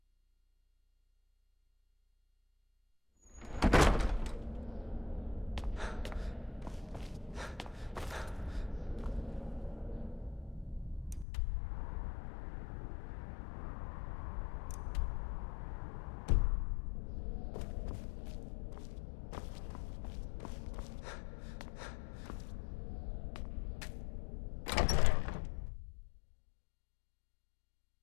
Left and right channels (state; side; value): drops out; right; at 11.2 s